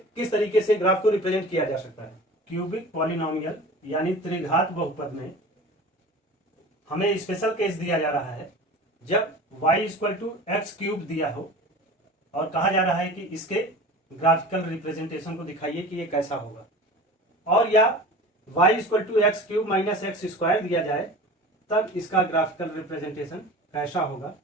किस तरीके से ग्राफ को रिप्रेजेंट किया जा सकता है। क्यूबिक पॉलिनोमियल यानी त्रिघात बहुपद में हमें स्पेशल केस दिया जा रहा है जब y = x³ दिया हो और कहा जा रहा है कि इसके ग्राफिकल रिप्रेजेंटेशन को दिखाइए कि ये कैसा होगा, और या y = x³ - x² दिया जाए तब इसका ग्राफिकल रिप्रेजेंटेशन कैसा होगा,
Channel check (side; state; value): both; normal; correlation 0.37